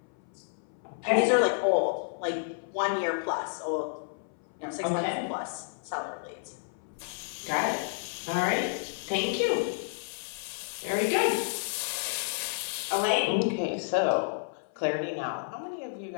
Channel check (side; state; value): right; silent; 57 dB below the other